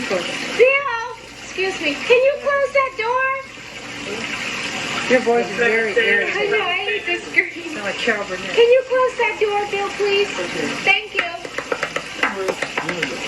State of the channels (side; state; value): both; identical; correlation 1.00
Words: Bill, excuse me. Can you close that door? Your voice is very I know, irritating. I hate this screen. Sound like Carol Burnett. Can you close that door, Bill, please? Thank you.